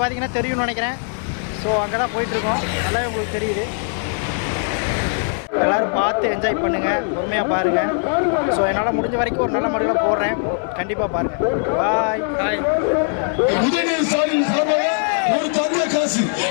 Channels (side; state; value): right; silent; 57 dB below the other